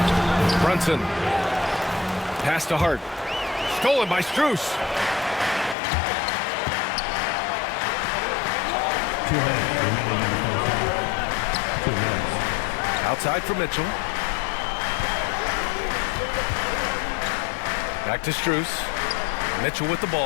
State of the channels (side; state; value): right; drops out; at 5.8 s